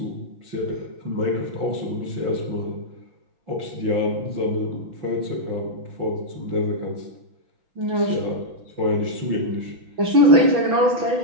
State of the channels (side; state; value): left; late; 6.0 ms